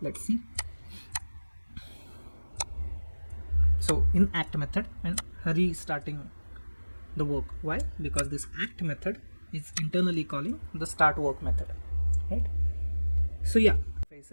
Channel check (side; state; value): both; inverted; correlation -1.00